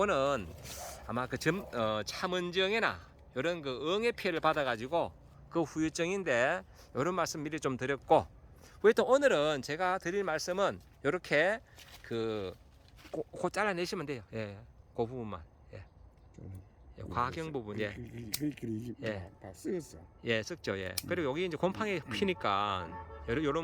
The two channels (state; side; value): identical; both; correlation 1.00